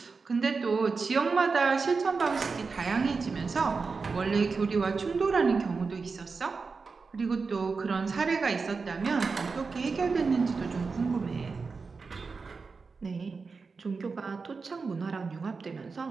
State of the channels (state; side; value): quieter; left; 4.6 dB